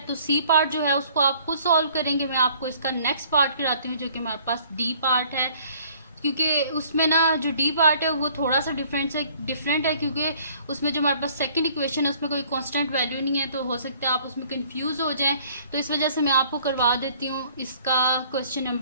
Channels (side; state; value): both; inverted; correlation -0.56